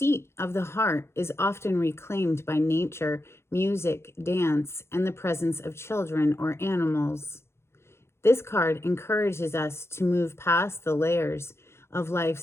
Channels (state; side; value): late; right; 0.12 ms